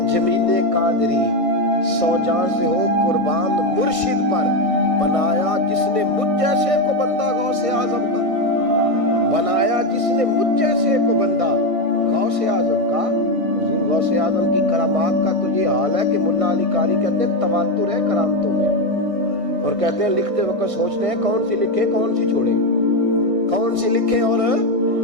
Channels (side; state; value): left; late; 1.6 ms